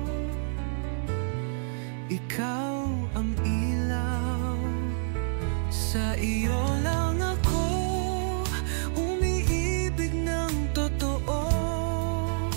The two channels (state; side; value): silent; left; digital silence